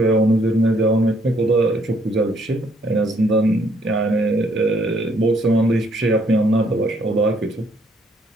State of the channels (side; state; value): both; normal; correlation 0.67